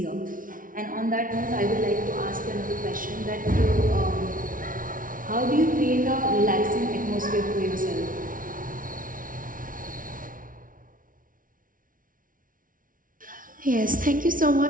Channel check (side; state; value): left; late; 0.39 ms